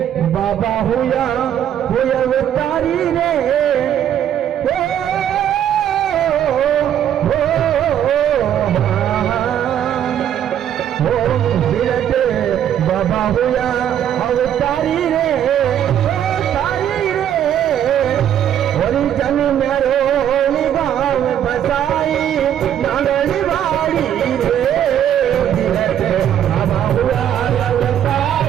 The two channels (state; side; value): quieter; left; 10.1 dB